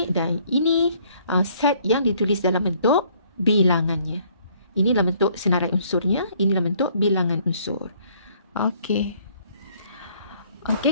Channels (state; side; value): inverted; both; correlation -0.63